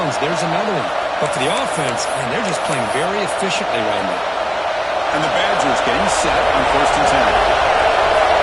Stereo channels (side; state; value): both; identical; correlation 1.00